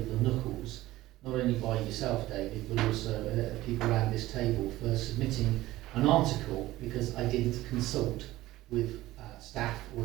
the knuckles, not only by yourself, David, but also people around this table for submitting an article because I didn't consult with staff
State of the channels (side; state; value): left; quieter; 16.7 dB